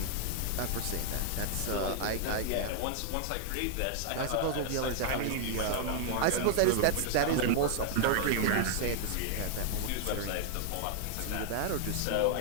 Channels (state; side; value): different; both; correlation 0.00